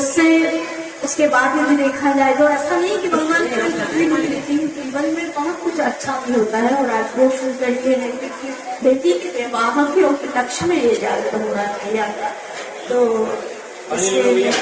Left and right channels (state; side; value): identical; both; correlation 1.00